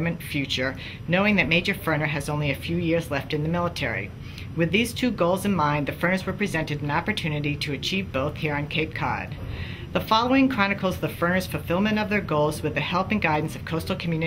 future, knowing that Major Ferner has only a few years left in the military. With these two goals in mind, the Ferners were presented an opportunity to achieve both here on Cape Cod. The following chronicles the Ferners' fulfillment of their goals with the help and guidance of Coastal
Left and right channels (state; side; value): identical; both; correlation 1.00